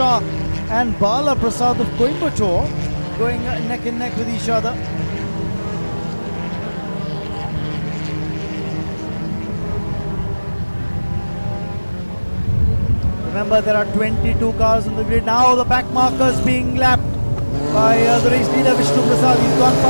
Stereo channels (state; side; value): inverted; both; correlation -1.00